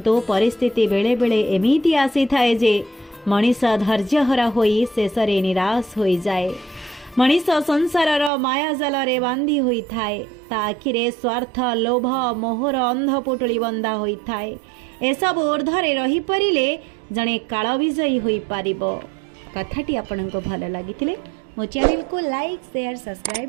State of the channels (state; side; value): drops out; left; at 8.3 s